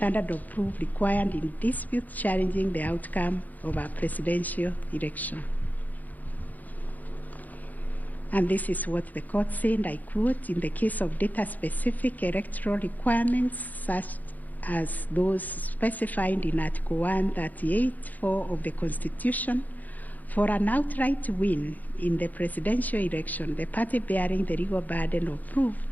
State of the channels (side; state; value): right; late; 0.081 ms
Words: of proof required in disputes challenging the outcome of a presidential election. And this is what the court said, I quote, in the case of data-specific electoral requirements such as those specified in Article 138(4) of the Constitution, for an outright win in the presidential election, the party bearing the legal burden of proof